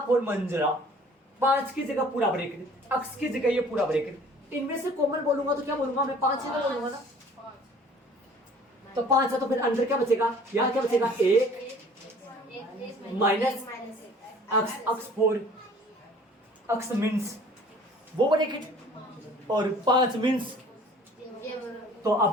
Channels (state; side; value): normal; both; correlation 0.51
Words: मंजिला, 5 की जगह पूरा ब्रैकेट, x की जगह ये पूरा ब्रैकेट। इनमें से कॉमन बोलूंगा तो क्या बोलूंगा मैं? 5 ही तो बोलूंगा ना। तो 5 है तो फिर अंदर क्या बचेगा? यहाँ क्या बचेगा? 1 माइनस x 4, x मीन्स वो ब्रैकेट, और 5 मीन्स। तो